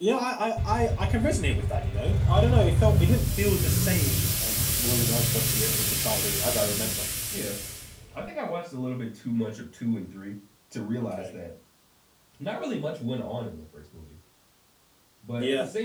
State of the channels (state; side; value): identical; both; correlation 1.00